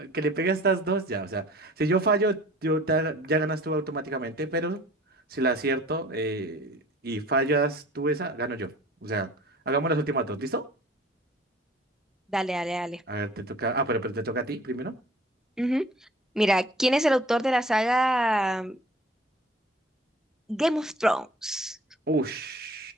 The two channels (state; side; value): normal; both; correlation 0.48